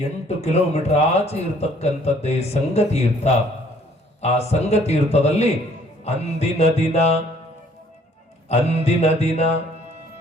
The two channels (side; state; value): both; normal; correlation 0.60